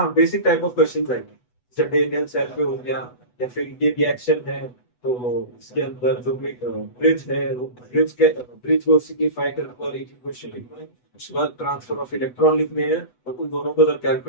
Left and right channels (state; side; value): late; right; 8.1 ms